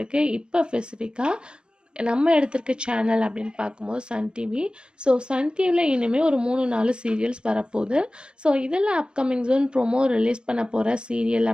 இப்போ ஸ்பெசிஃபிக்காக நம்ம எடுத்திருக்க சேனல் அப்படின்னு பார்க்கும்போது சன் டிவி. ஸோ சன் டிவியில் இனிமேல் ஒரு 3-4 சீரியல்ஸ் வரப்போகுது. ஸோ இதில் அப்கமிங் ஜோன் ப்ரோமோ ரிலீஸ் பண்ண போகிற சீரியல்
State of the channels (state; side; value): late; left; 0.051 ms